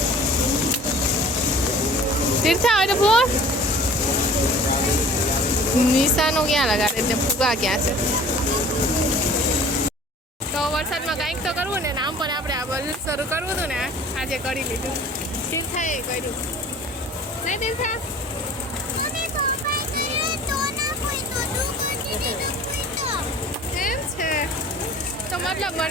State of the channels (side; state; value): both; normal; correlation 0.46